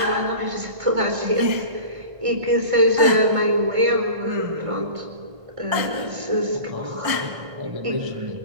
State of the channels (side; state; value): left; late; 1.5 ms